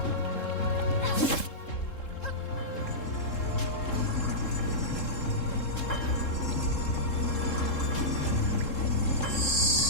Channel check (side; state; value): right; late; 3.7 ms